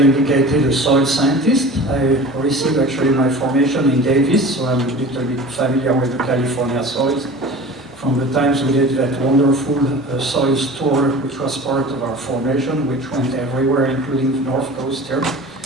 a soil scientist. I received actually my formation in Davis, so I'm a little bit familiar with the California soils from the times we did that wonderful soils tour, which was part of our formation, which went everywhere, including the North Coast here.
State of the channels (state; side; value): normal; both; correlation 0.39